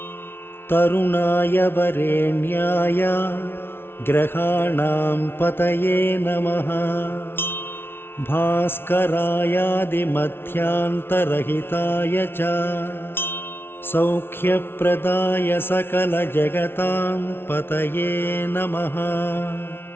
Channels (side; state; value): right; late; 0.11 ms